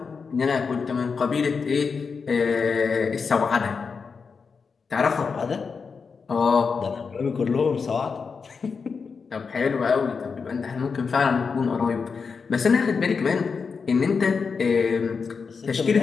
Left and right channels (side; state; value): right; quieter; 5.3 dB